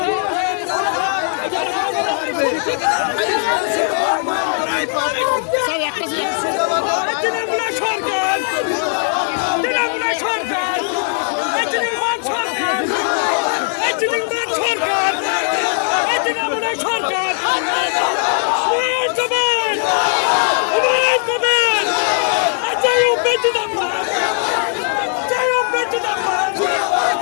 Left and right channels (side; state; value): right; silent; 59 dB below the other